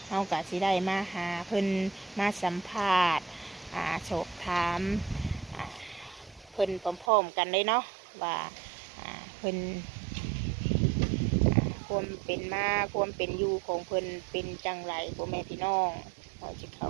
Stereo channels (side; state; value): left; drops out; at 7.1 s